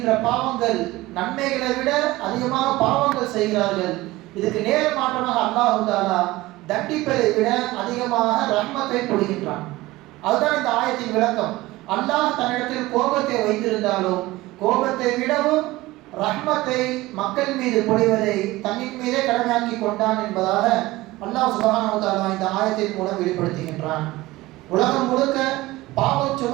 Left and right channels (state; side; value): quieter; left; 18.9 dB